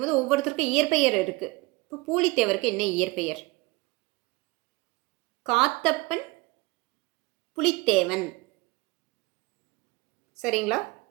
ஒவ்வொருத்தருக்கும் இயற்பெயர் இருக்குது. இப்போ பூலித்தேவருக்கு என்ன இயற்பெயர்? காத்தப்பன் புலித்தேவன். சரிங்களா?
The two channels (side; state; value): left; quieter; 23.4 dB